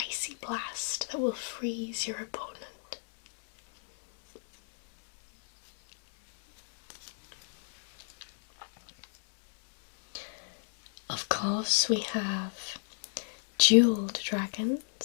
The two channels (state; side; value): silent; right; digital silence